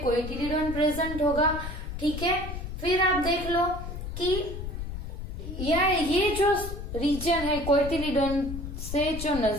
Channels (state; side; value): noise; left; rumble, 7 dB below the sound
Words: प्रेजेंट होगा, ठीक है। फिर आप देख लो कि ये जो रीजन है कोइटिलिडोन से जो